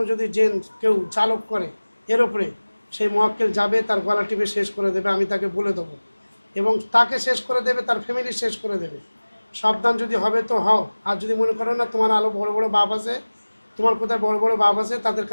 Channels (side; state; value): both; inverted; correlation -1.00